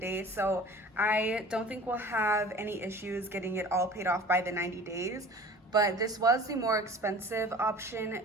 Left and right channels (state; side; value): normal; both; correlation 0.43